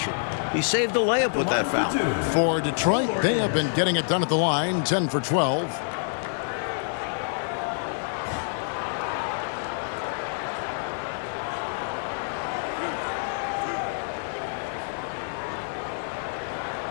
He saved the layup with that foul. For Detroit, they have been getting it done at the line, 10 for 12.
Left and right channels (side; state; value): right; silent; digital silence